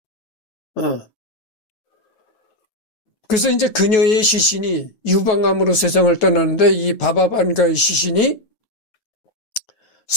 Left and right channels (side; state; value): right; late; 9.3 ms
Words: 그래서 이제 그녀의 시신이 유방암으로 세상을 떠났는데 이 바바반가의 시신이